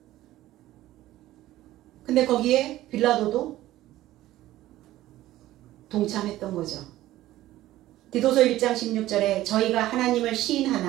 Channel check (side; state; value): left; quieter; 15.2 dB